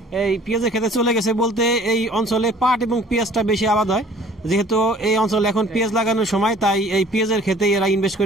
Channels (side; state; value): both; normal; correlation 0.52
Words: এই পেঁয়াজের খেতে চলে গেছে বলতে এই অঞ্চলে পাট এবং পেঁয়াজটা বেশি আবাদ হয়। যেহেতু এই অঞ্চলে এখন পেঁয়াজ লাগানোর সময়, তাই এই পেঁয়াজের খেতে এরা ইনভেস্ট